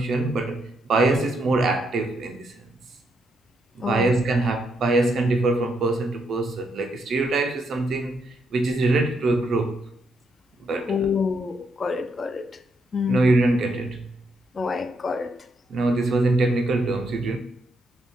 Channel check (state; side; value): normal; both; correlation 0.77